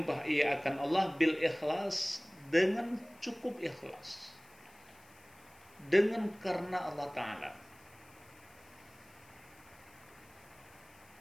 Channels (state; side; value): noise; left; hiss, 26 dB below the sound